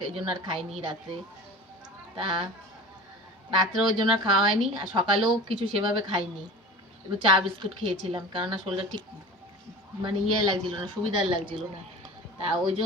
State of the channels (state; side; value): normal; both; correlation 0.35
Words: এই জন্য আর খাইনি রাত্রে। তা রাত্রে ওই জন্য আর খাওয়া হয়নি, আর সকালেও কিছু সেভাবে খাইনি। একটু চা বিস্কুট খেয়েছিলাম, কেননা শরীরটা ঠিক মানে লাগছিল না, সুবিধার লাগছিল না। তা ওই